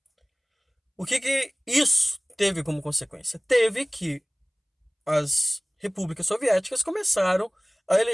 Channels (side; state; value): both; identical; correlation 1.00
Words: O que isso teve como consequência? Teve que as repúblicas soviéticas começaram a